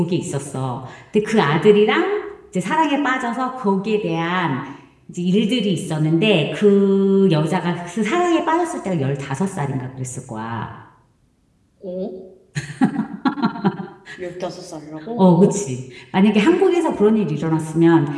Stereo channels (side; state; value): both; identical; correlation 1.00